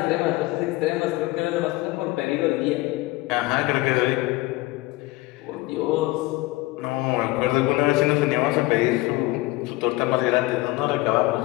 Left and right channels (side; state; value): right; quieter; 20.0 dB